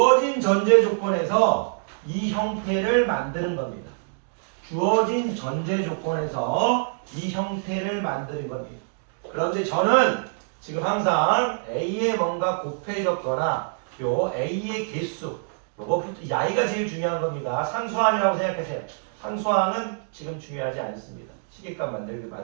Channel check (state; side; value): silent; left; digital silence